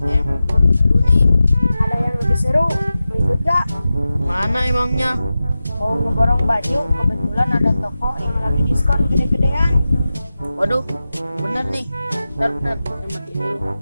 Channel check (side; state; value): both; inverted; correlation -0.94